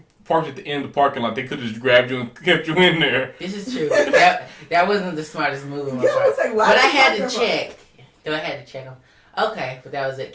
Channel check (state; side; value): identical; both; correlation 1.00